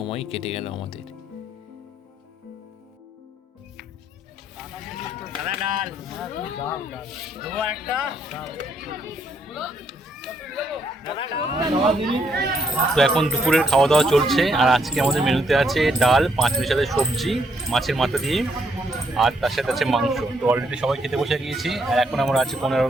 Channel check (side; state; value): both; normal; correlation 0.73